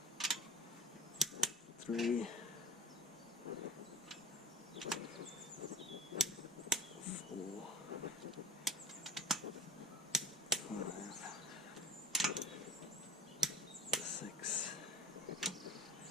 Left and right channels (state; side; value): normal; both; correlation 0.34